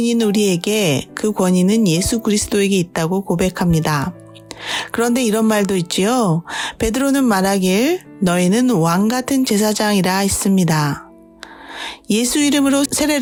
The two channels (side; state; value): both; identical; correlation 1.00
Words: 우리에게 그 권위는 예수 그리스도에게 있다고 고백합니다. 그런데 이런 말도 있지요. 베드로는 말하길 너희는 왕 같은 제사장이라 했습니다. 예수 이름으로